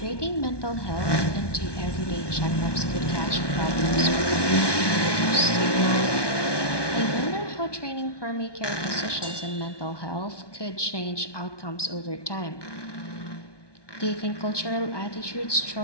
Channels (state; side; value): late; right; 1.2 ms